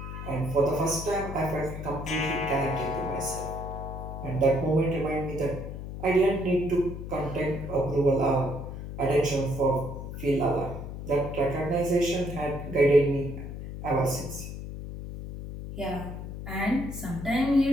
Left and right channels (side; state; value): left; noise; hum, 8 dB below the sound